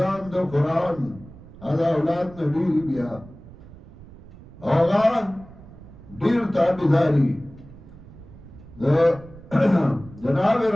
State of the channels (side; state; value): right; noise; rumble, 19 dB below the sound